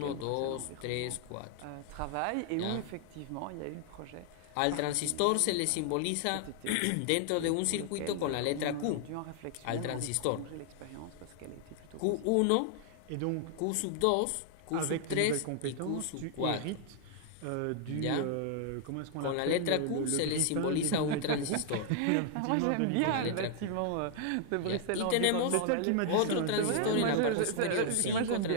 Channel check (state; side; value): different; both; correlation 0.00